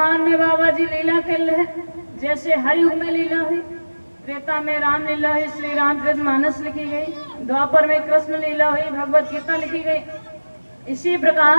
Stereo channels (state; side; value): inverted; both; correlation -1.00